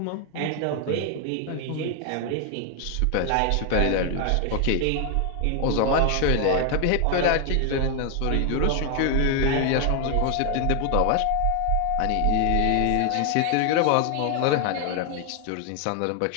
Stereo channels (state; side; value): different; both; correlation 0.01